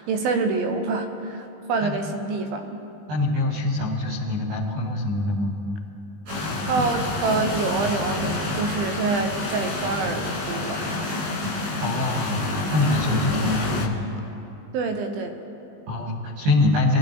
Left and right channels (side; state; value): left; late; 20 ms